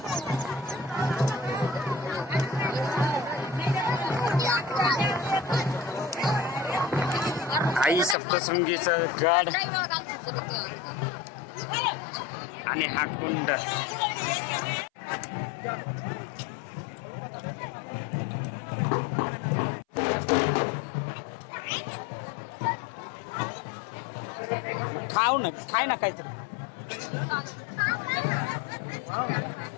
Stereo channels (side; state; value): right; drops out; at 8.2 s